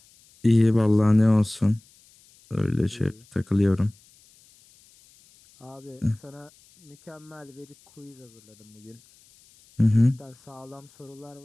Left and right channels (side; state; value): left; noise; hiss, 29 dB below the sound